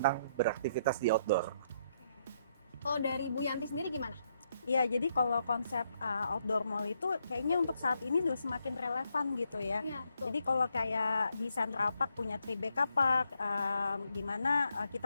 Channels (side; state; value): both; inverted; correlation -0.76